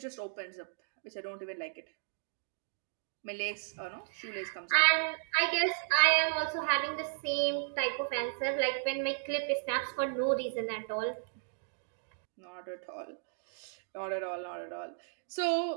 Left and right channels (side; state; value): left; silent; digital silence